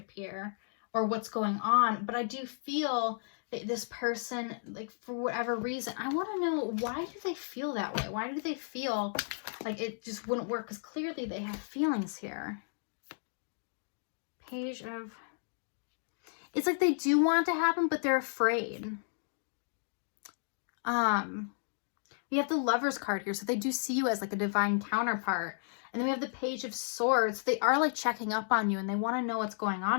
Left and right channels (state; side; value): silent; right; digital silence